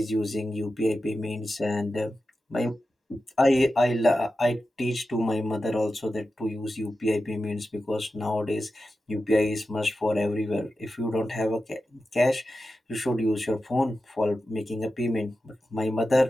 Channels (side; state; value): both; normal; correlation 0.92